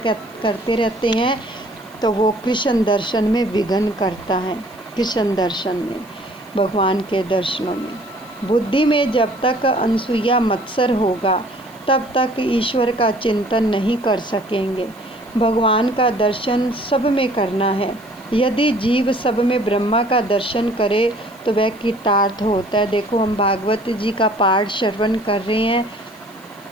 रहते हैं, तो वो कृष्ण दर्शन में विघ्न करता है। कृष्ण दर्शन में, भगवान के दर्शनों में, बुद्धि में जब तक अनसूया मत्सर होगा तब तक ईश्वर का चिंतन नहीं कर सकेंगे। भगवान का दर्शन सब में करना है। यदि जीव सब में ब्रह्मा का दर्शन करे तो वह कृतार्थ होता है। देखो, हम भागवत जी का पाठ श्रवण कर रहे हैं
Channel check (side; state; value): right; noise; hiss, 27 dB below the sound